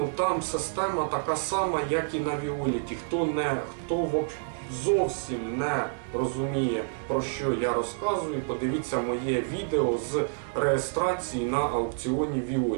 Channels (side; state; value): left; silent; digital silence